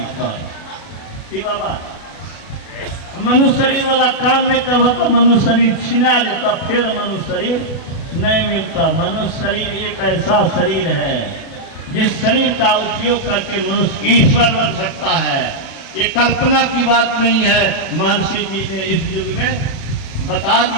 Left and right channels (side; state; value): right; late; 36 ms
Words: कर। कि बाबा मनुष्य शरीर वाला काम नहीं करवा तो मनुष्य शरीर छिना देता, फिर मनुष्य शरीर नहीं मिलता। मनुष्य शरीर एक ऐसा शरीर है जिस शरीर का उपयोग करके मनुष्य ईश्वर बन सकता है। ये कल्पना की बात नहीं है। महर्षि जी ने इस युग में बता